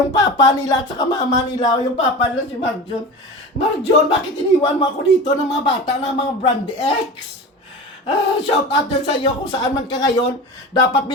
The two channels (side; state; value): both; normal; correlation 0.31